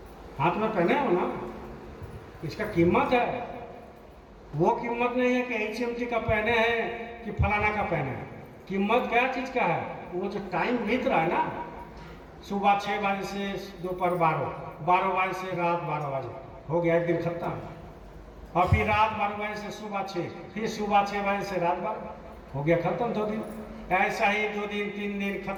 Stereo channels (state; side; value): identical; both; correlation 1.00